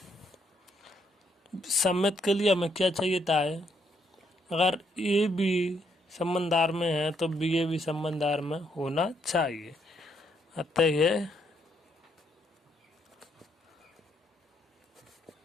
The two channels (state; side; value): normal; both; correlation 0.74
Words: सम्मित के लिए हमें क्या चाहिए था है अगर ए भी संबंधार में है तो बी ए भी संबंधार में होना चाहिए। अतः यह